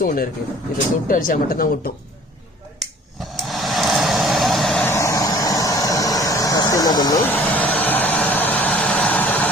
ஒன்று இருக்குது. இதை தொட்டு அடித்தா மட்டும்தான் ஒட்டும். ஃபஸ்ட்டு என்ன பண்ணி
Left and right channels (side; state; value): both; normal; correlation 0.51